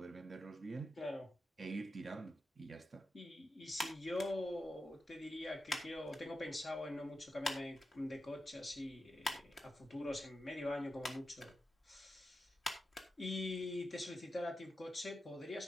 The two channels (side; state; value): both; normal; correlation 0.90